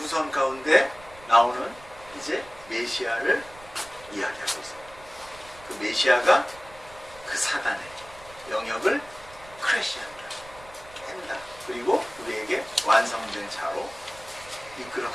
가운데 나오는 이제 메시아를 이야기하고 있어요. 그 메시아가 그 사단의 영역을 크래시한다, 깬다. 그리고 우리에게 완성된 자로 이끌어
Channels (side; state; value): right; noise; rumble, 21 dB below the sound